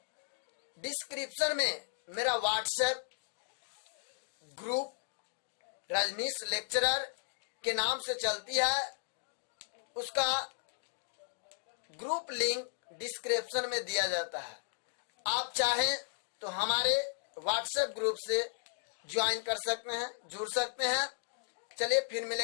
डिस्क्रिप्शन में मेरा व्हाट्सएप ग्रुप रजनीश लेक्चरर के नाम से चलती है, उसका ग्रुप लिंक डिस्क्रिप्शन में दिया जाता है। आप चाहें तो हमारे व्हाट्सएप ग्रुप से ज्वाइन कर सकते हैं, जुड़ सकते हैं। चलिए फिर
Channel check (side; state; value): right; silent; digital silence